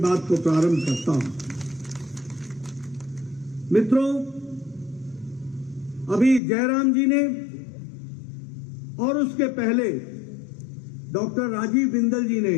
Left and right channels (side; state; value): right; drops out; at 6.4 s